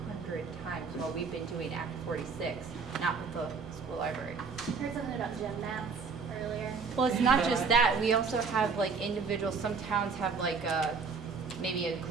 times while we've been doing Act 46, not with the school library. I heard something about gym mats earlier. Well, it's not just that. We also have like individuals, some towns have like maybe a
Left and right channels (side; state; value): left; quieter; 5.1 dB